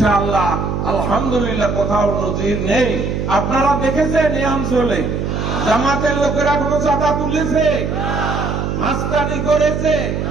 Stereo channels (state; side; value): noise; right; hum, 2 dB below the sound